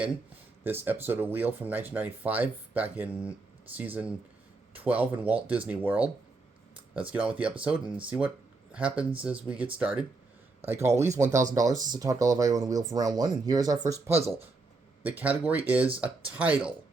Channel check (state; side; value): quieter; left; 3.6 dB